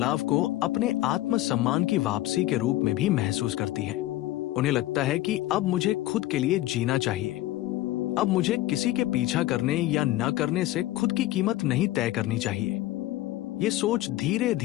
को अपने आत्मसम्मान की वापसी के रूप में भी महसूस करती हैं। उन्हें लगता है कि अब मुझे खुद के लिए जीना चाहिए, अब मुझे किसी के पीछा करने या न करने से खुद की कीमत नहीं तय करनी चाहिए। ये सोच धीरे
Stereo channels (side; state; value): right; quieter; 16.1 dB